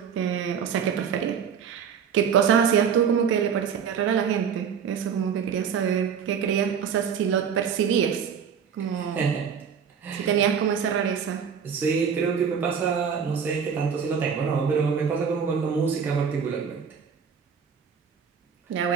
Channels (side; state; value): left; quieter; 7.1 dB